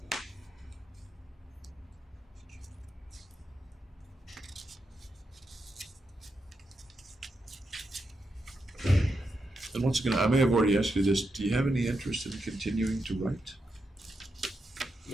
And once again, I may have already asked you this, do you have any interest in continuing to write?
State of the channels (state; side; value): normal; both; correlation 0.85